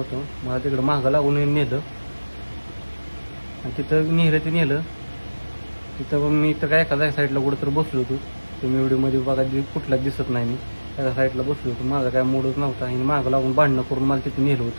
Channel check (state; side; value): inverted; both; correlation -1.00